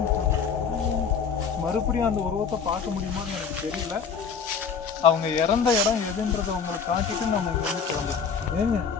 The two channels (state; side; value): quieter; right; 6.2 dB